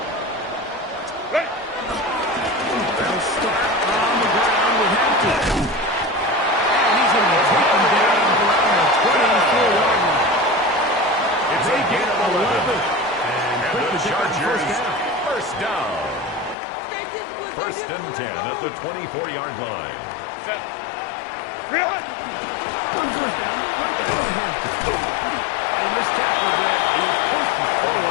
Chargers first down. First and 10 at the 24-yard line. Set. On first down, right there in Hampton. And this tackle there, he pushes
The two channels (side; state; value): right; drops out; at 16.6 s